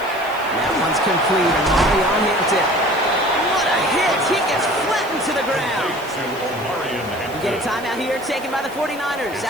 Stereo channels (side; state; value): right; noise; hiss, 20 dB below the sound